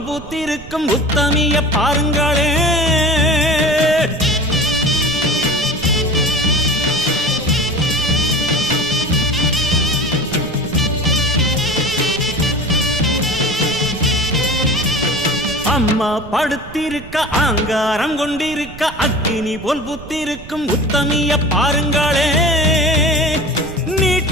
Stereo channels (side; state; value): right; noise; rumble, 15 dB below the sound